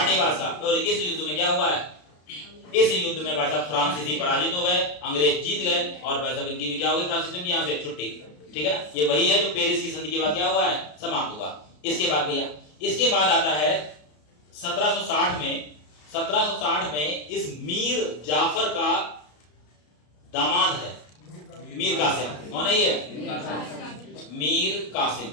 का। और इस युद्ध में क्या हुआ है? इस युद्ध में भाई साहब फ्रांसीसी पराजित हो गए, अंग्रेज जीत गए, और भाई साहब इनकी भी क्या हो गई? फ्रांसीसियों की यहाँ से छुट्टी। ठीक है ना? ये वही है जो पेरिस की संधि के बाद क्या हुआ है? समाप्त हुआ। इसके बाद भैया, इसके बाद आता है 1760 में इस मीर जाफर का दामाद है मीर कासिम। कौन है ये? मीर कासिम।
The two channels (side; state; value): right; late; 33 ms